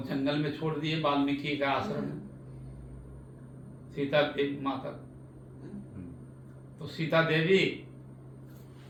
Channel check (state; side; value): identical; both; correlation 1.00